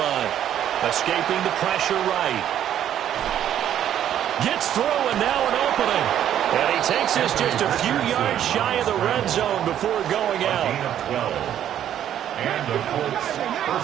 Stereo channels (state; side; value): quieter; left; 10.6 dB